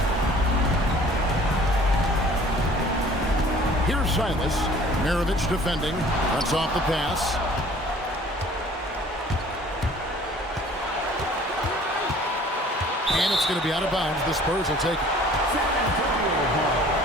Here's Silas. Maravich defending. Cuts off the pass. And it's going to be out of bounds. The Spurs will take it.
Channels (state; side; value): normal; both; correlation 0.51